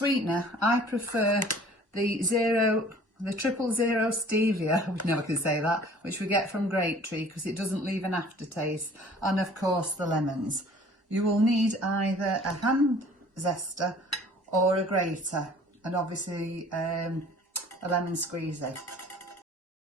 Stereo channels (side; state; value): both; normal; correlation 0.51